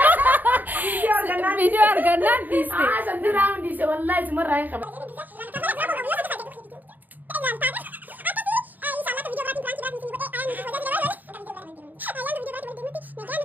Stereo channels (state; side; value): late; left; 0.086 ms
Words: فيديو أرجعنا ديسه سندراون ديسه والله اسمه رايح